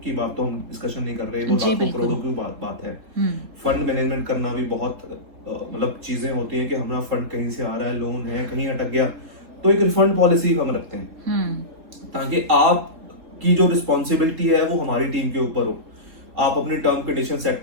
बात तो हम डिस्कशन नहीं कर रहे, वो लाखों करोड़ों की बात है। फंड मैनेजमेंट करना भी बहुत मतलब चीजें होती हैं कि हमारा फंड कहीं से आ रहा है, लोन है, कहीं अटक गया, तो एक रिफंड पॉलिसी हम रखते हैं ताकि आपकी जो रिस्पॉन्सिबिलिटी है वो हमारी टीम के ऊपर हो। आप अपनी टर्म कंडीशन सेट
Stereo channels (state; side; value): late; left; 3.7 ms